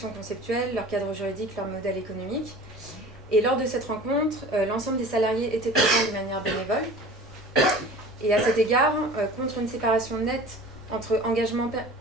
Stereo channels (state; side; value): normal; both; correlation 0.41